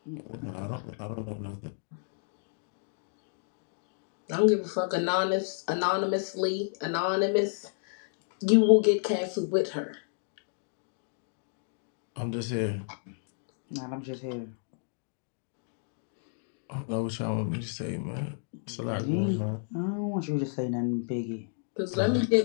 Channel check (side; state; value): right; silent; digital silence